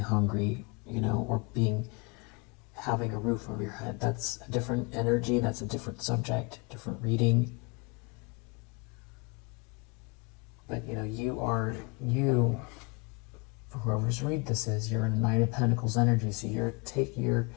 or having a roof over your head. That's a different energy, that's a different subject, different reading. But you, for whoever's read this is, you're in a Knight of Pentacles energy, so you're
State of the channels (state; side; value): quieter; right; 29.7 dB